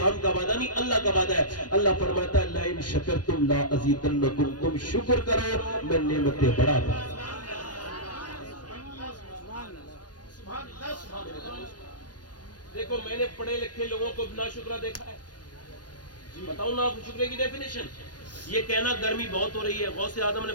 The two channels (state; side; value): late; right; 0.69 ms